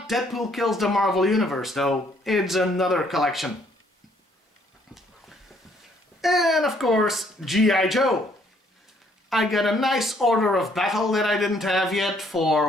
Deadpool Kills the Marvel Universe though, it's another collection. And of course, G.I. Joe. I got a nice Order of Battle that I didn't have yet for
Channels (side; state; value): both; normal; correlation 0.66